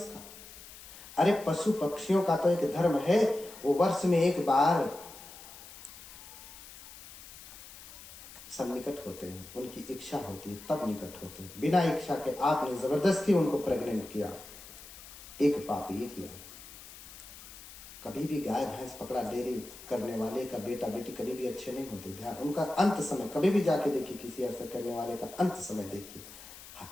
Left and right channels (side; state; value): left; noise; hiss, 16 dB below the sound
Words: अरे पशु पक्षियों का तो एक धर्म है, वो वर्ष में एक बार सन्निकट होते हैं, उनकी इच्छा होती है तब निकट होते हैं। बिना इच्छा के आपने जबरदस्ती उनको प्रेग्नेंट किया, एक पाप ये किया। कभी भी गाय भैंस पकड़ा डेयरी करने वाले का बेटा बेटी कभी भी अच्छे नहीं होते। ध्यान, उनका अंत समय कभी भी जाके देखिए, किसी ऐसा करने वाले का अंत समय देखिए,